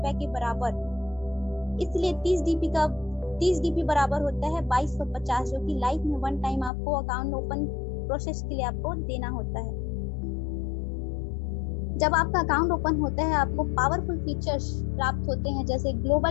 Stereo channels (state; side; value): drops out; right; at 6.7 s